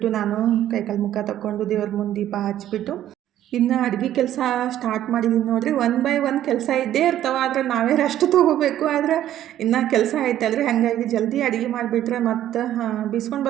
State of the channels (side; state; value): left; quieter; 12.1 dB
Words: ನಾನು ಕೈಕಾಲು ಮುಖ ತಗೊಂಡು ದೇವ್ರ ಮುಂದೆ ದೀಪ ಹಚ್ಬಿಟ್ಟು ಇನ್ನು ಅಡುಗೆ ಕೆಲಸ ಸ್ಟಾರ್ಟ್ ಮಾಡಿದ್ದೀನಿ ನೋಡಿರಿ. ಒನ್ ಬೈ ಒನ್ ಕೆಲಸ ಇದ್ದೇ ಇರ್ತಾವೆ, ಆದರೆ ನಾವೇ ರೆಸ್ಟ್ ತೊಗೋಬೇಕು. ಆದರೆ ಇನ್ನೂ ಕೆಲಸ ಐತಲ್ರಿ, ಹಾಗಾಗಿ ಜಲ್ದಿ ಅಡುಗೆ ಮಾಡಿಬಿಟ್ರೆ ಮತ್ತು ಬೀಸ್ಕೊಂಡು